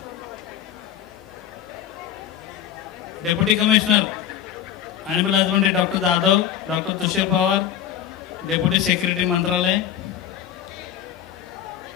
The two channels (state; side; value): quieter; right; 10.2 dB